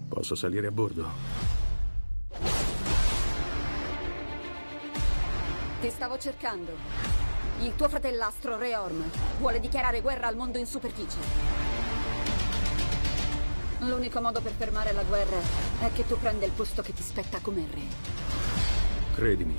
Posso salire a bordo? Ti stavo cercando. Il tuo fratellastro, Re Orm, vuole dichiarare guerra al mondo in superficie. L'unico modo per fermare la guerra è che tu prenda il posto che ti spetta come re. Credimi,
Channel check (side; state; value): both; inverted; correlation -1.00